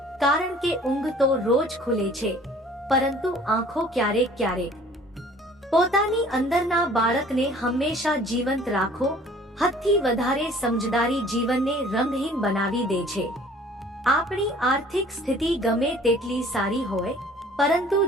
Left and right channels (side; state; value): both; normal; correlation 0.52